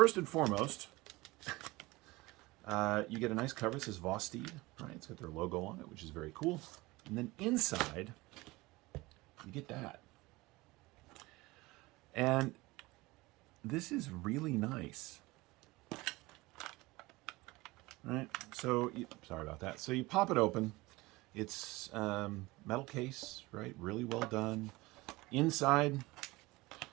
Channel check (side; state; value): left; quieter; 21.4 dB